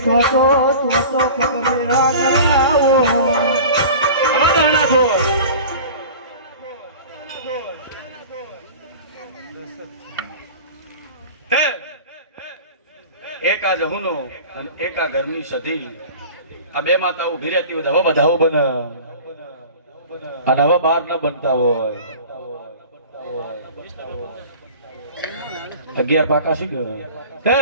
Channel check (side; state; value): both; inverted; correlation -0.39